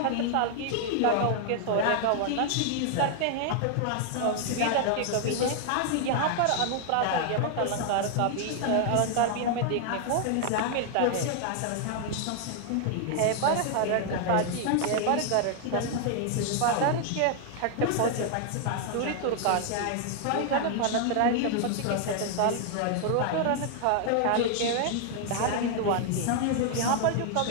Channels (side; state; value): both; different; correlation 0.00